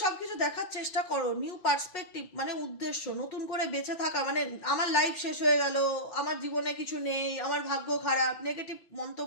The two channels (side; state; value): right; late; 6.0 ms